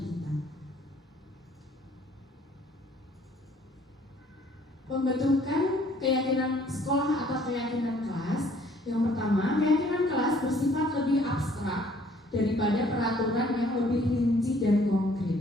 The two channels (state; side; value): normal; both; correlation 0.60